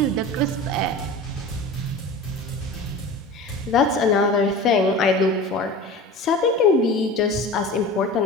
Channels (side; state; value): both; normal; correlation 0.35